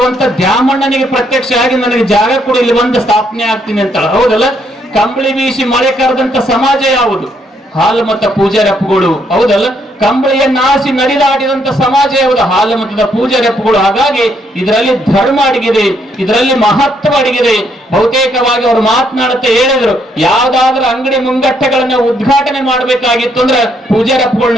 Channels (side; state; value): both; normal; correlation 0.72